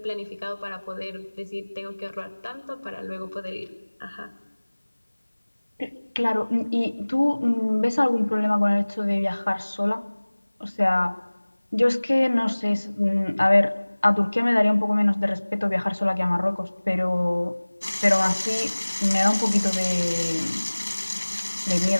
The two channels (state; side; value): inverted; both; correlation -1.00